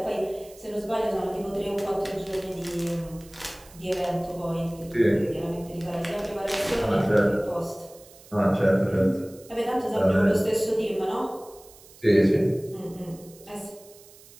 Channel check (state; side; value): noise; right; hiss, 23 dB below the sound